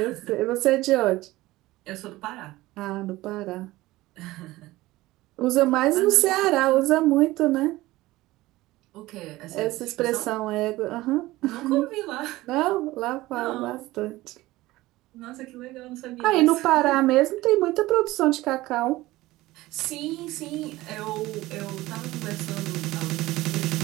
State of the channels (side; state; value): left; quieter; 18.2 dB